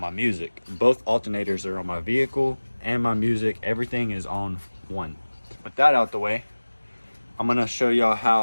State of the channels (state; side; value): inverted; both; correlation -1.00